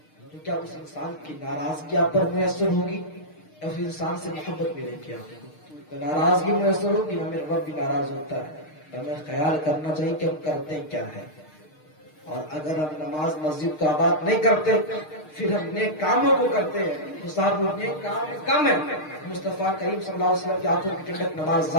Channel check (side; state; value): right; late; 6.5 ms